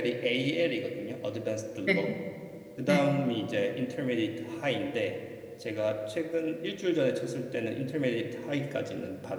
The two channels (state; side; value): identical; both; correlation 1.00